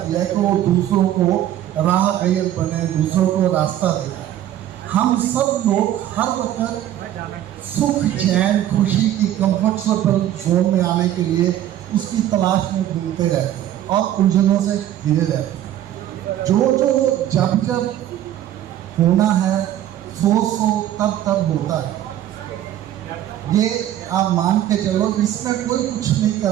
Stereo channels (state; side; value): quieter; left; 12.1 dB